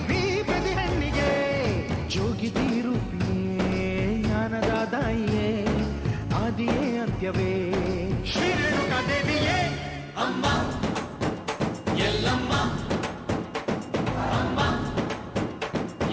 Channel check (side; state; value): both; identical; correlation 1.00